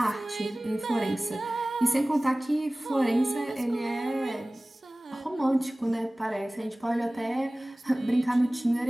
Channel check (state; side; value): normal; both; correlation 0.98